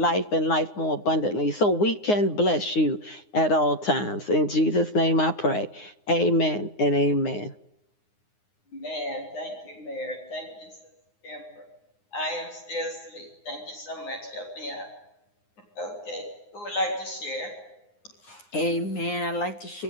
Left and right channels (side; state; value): right; late; 9.7 ms